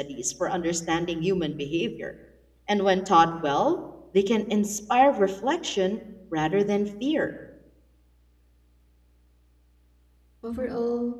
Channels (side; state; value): both; identical; correlation 1.00